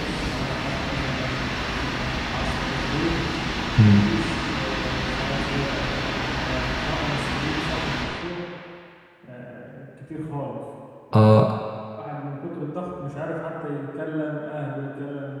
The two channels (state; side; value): identical; both; correlation 1.00